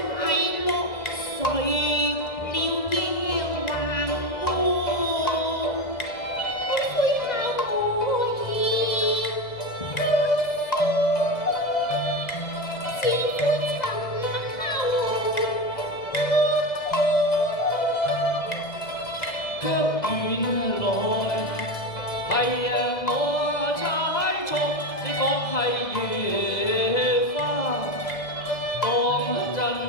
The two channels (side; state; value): right; late; 2.0 ms